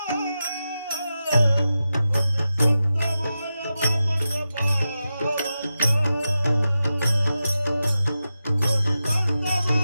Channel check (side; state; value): both; inverted; correlation -0.91